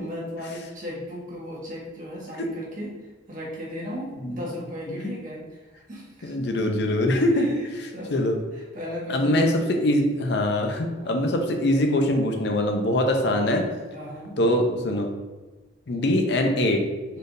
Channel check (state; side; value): normal; both; correlation 0.45